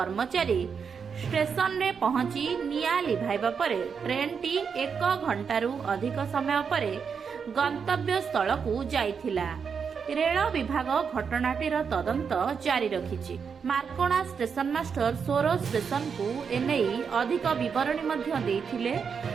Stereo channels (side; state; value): left; quieter; 6.3 dB